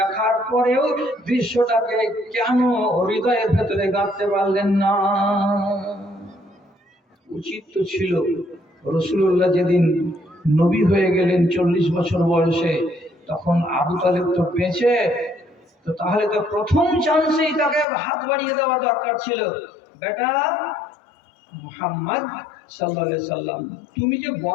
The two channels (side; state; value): right; drops out; at 17.9 s